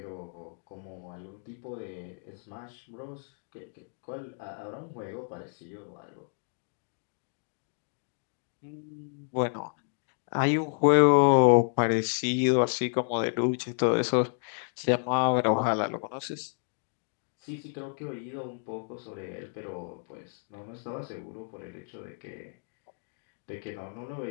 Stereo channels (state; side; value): silent; right; 57 dB below the other